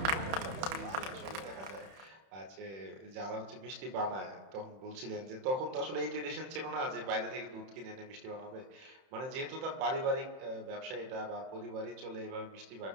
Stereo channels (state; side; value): late; left; 31 ms